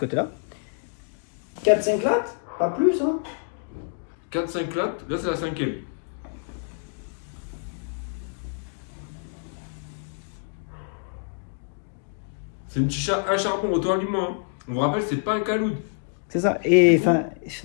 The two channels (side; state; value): right; silent; 60 dB below the other